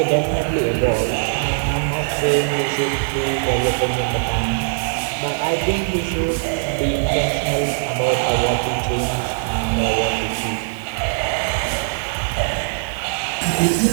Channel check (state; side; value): silent; left; digital silence